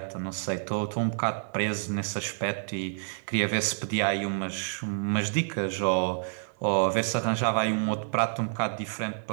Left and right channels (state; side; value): silent; left; 59 dB below the other